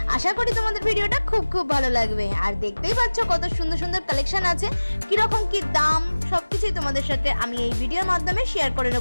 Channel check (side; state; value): both; inverted; correlation -1.00